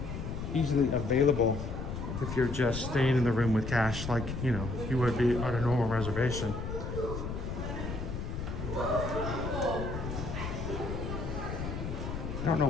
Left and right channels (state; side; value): noise; left; rumble, 5 dB below the sound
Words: easily available if you're just staying in the room with cash, like you would be on a normal reservation. I don't know